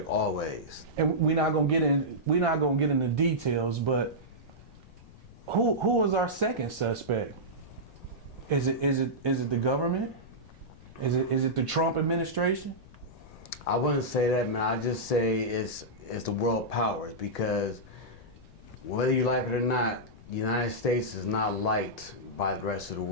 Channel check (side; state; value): left; noise; rumble, 21 dB below the sound